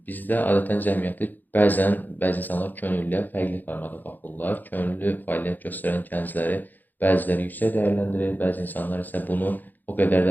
bizdə adətən cəmiyyəti bəzi insanlar könüllüyə fərqli formada baxırlar. Könüllü fəaliyyət göstərən gəncləri bəziləri yüksək dəyərləndirir, bəzi insanlar isə bunu o qədər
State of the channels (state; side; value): late; right; 0.086 ms